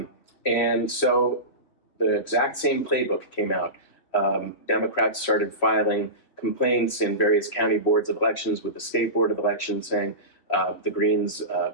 And so the exact same playbook came out. Democrats started filing complaints in various county boards of elections with the state board of elections saying the Greens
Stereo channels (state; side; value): late; right; 3.0 ms